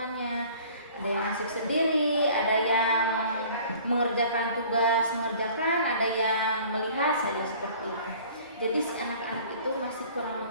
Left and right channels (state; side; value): inverted; both; correlation -0.49